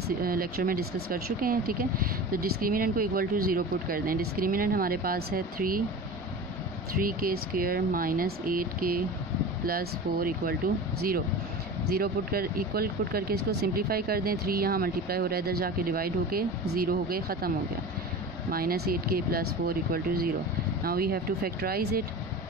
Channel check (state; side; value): normal; both; correlation 0.33